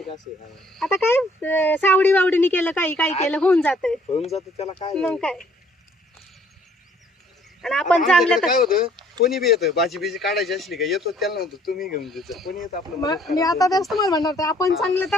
असं आहे. आता काय सावडी वावडीने केलं काही केलं होऊन जातंय होऊन जातं त्याला काय मग काय. आणि आता आपण चांगलं आमच्याकडे काय होतं कोणी बी येतं भाजी बिजी काढायची असली का येतो त्याला नव्हतं तुम्ही घेऊन द्यायचं कोणी येतं आपलं मदत मी करायला. आता तेच तुम्हाला म्हणणार होते, आपण चांगलं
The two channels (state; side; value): normal; both; correlation 0.61